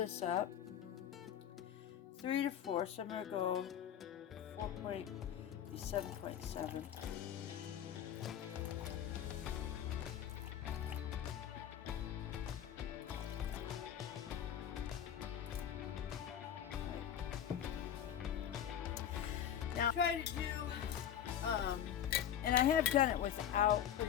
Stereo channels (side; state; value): right; quieter; 9.8 dB